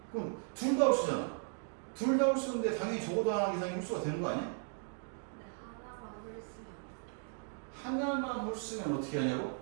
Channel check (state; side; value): silent; left; 53 dB below the other